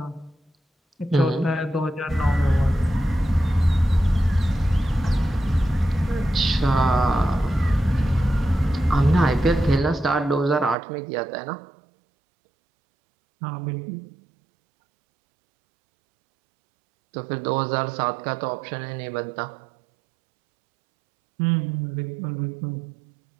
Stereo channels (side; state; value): left; drops out; at 10.8 s